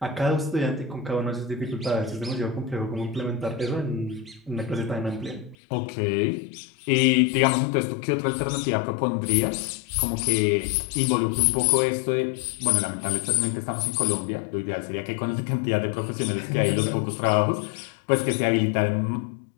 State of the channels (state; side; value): drops out; right; at 5.6 s